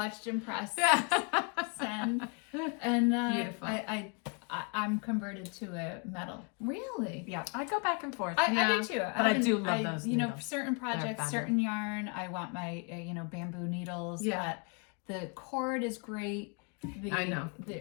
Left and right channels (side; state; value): right; quieter; 34.8 dB